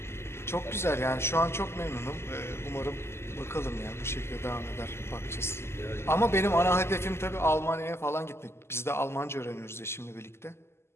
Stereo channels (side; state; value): right; late; 0.12 ms